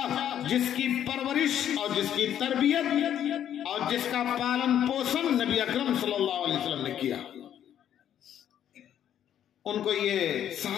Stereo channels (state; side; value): quieter; right; 10.2 dB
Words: جس کی پرورش اور جس کی تربیت اور جس کا پالن پوشن نبی اکرم صلی اللہ علیہ وسلم نے کیا۔ ان کو یہ